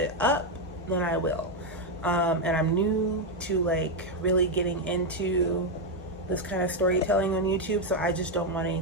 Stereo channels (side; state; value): both; normal; correlation 0.03